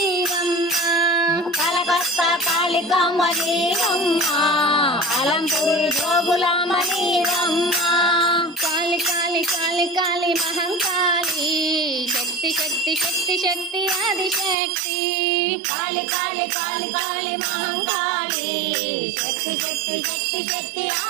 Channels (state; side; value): drops out; left; at 14.6 s